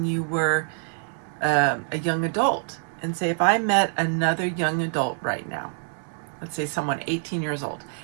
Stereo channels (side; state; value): left; silent; 61 dB below the other